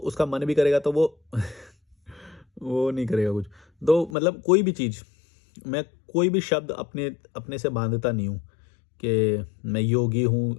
मन भी करेगा तो वो वो नहीं करेगा कुछ। तो मतलब कोई भी चीज़, मैं कोई भी शब्द अपने अपने से बांधता नहीं हूँ कि मैं योगी हूँ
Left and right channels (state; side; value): drops out; right; at 4.2 s